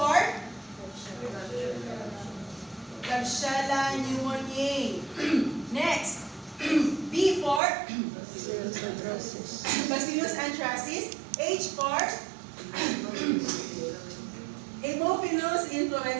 Klebsiella pneumoniae. Next, B for Bacillus anthracis. H for Haemophilus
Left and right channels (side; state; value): left; drops out; at 7.6 s